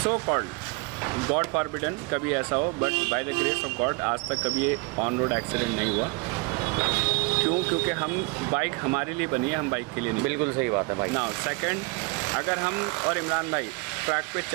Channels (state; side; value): quieter; left; 28.0 dB